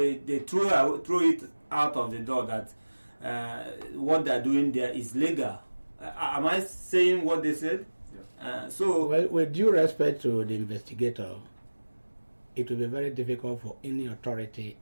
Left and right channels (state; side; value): inverted; both; correlation -1.00